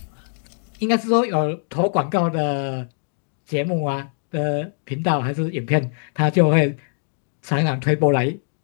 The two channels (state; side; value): silent; right; digital silence